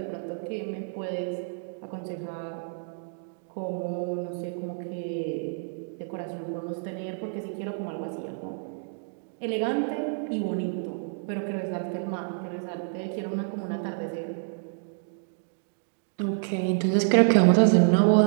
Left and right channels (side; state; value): left; silent; digital silence